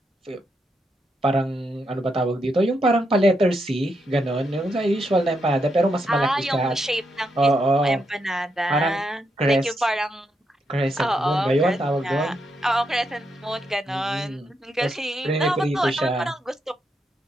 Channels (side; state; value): both; normal; correlation 0.81